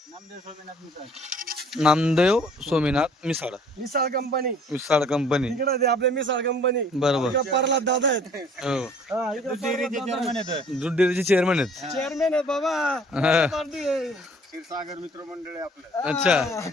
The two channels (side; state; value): both; normal; correlation 0.55